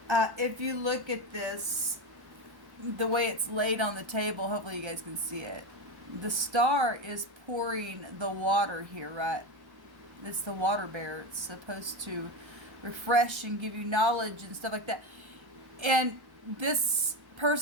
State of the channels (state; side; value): late; left; 1.1 ms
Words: If you look at this, the way it's laid on the table, hopefully you guys can see it. The star is pouring the water here, right? It's the water bearer. It's supposed to refresh and give you knowledge and stuff like that. And this